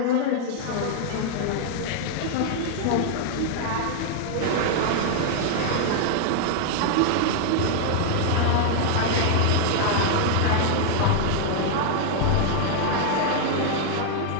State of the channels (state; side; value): different; both; correlation 0.00